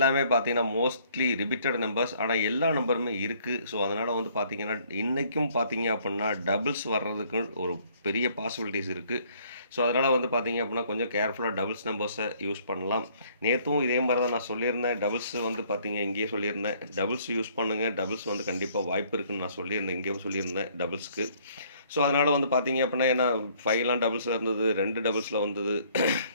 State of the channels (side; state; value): both; inverted; correlation -0.62